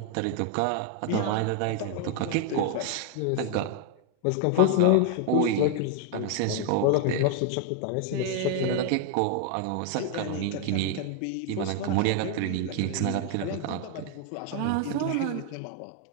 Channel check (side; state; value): both; different; correlation 0.00